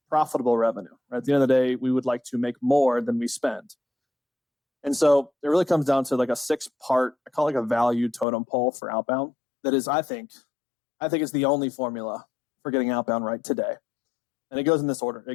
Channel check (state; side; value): drops out; right; at 8.2 s